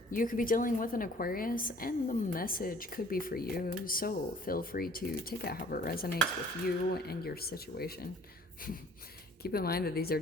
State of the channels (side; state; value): both; normal; correlation 0.53